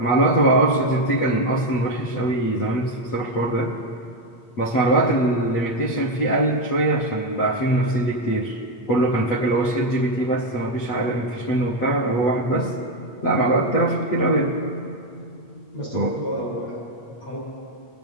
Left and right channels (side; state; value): right; late; 8.6 ms